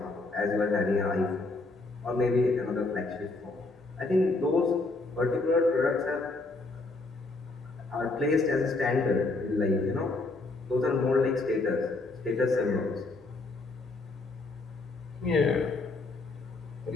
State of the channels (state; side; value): quieter; right; 3.3 dB